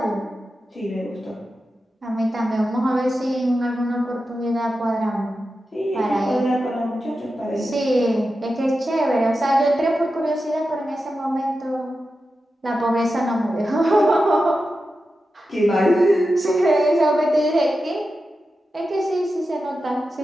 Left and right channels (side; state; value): both; normal; correlation 0.91